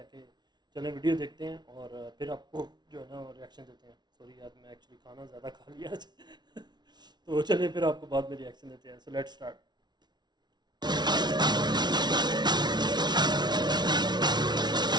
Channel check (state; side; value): late; left; 0.20 ms